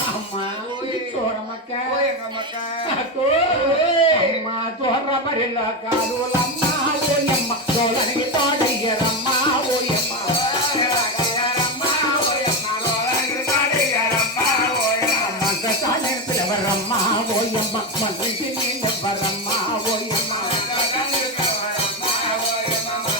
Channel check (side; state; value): both; normal; correlation 0.12